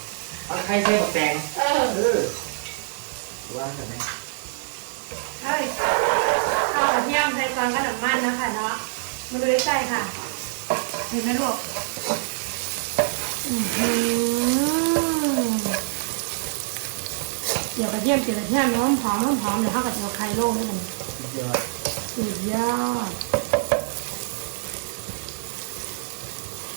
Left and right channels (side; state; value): left; silent; digital silence